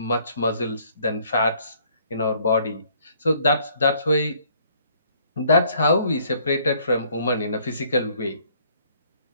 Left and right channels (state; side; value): inverted; both; correlation -0.62